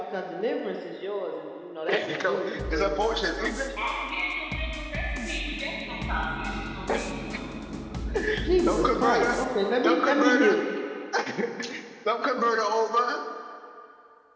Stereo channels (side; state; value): both; identical; correlation 1.00